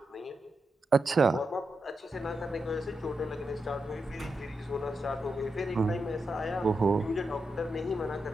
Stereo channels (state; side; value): normal; both; correlation 0.87